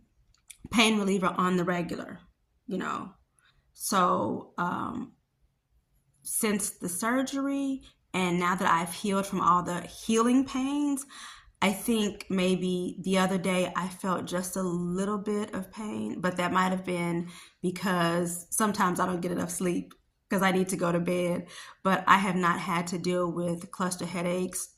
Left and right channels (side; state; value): both; identical; correlation 1.00